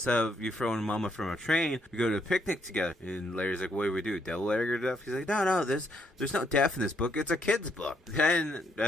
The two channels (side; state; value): both; normal; correlation 0.73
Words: of you throwing Mama from a train, we go to a picnic together. And Larry's like, what do we do? Devil Larry or death? He's like, no, there's no death in this book. It's a kid's book. Then,